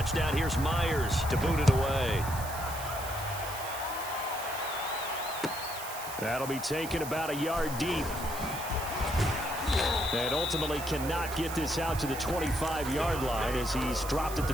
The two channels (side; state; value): right; noise; hiss, 10 dB below the sound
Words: Here's Myers to boot it away. That'll be taken about a yard deep. And ultimately cannot get this out to the 25-yard line as he's dropped at the